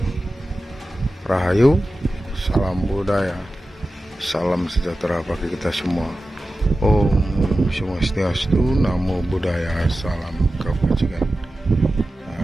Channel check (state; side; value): normal; both; correlation 0.94